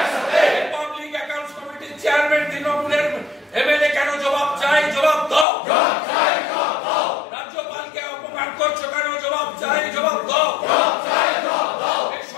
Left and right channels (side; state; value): right; drops out; at 5.5 s